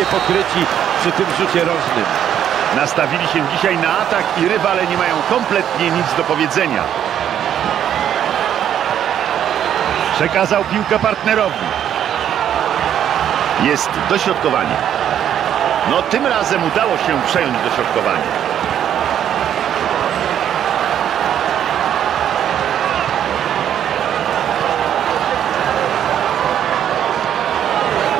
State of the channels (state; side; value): quieter; left; 9.9 dB